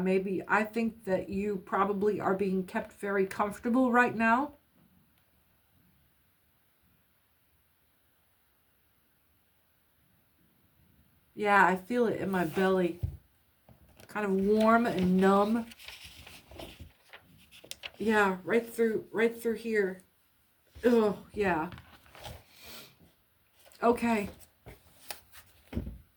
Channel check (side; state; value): both; identical; correlation 1.00